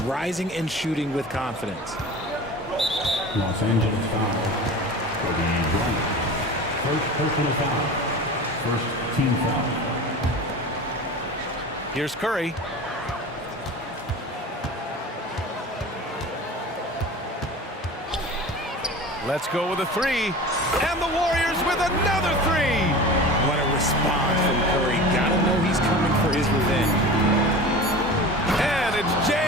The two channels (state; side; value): normal; both; correlation 0.35